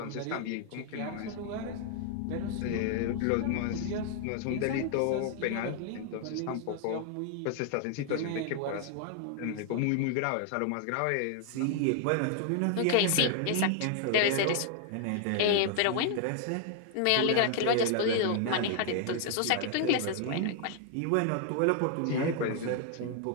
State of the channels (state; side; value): different; both; correlation 0.00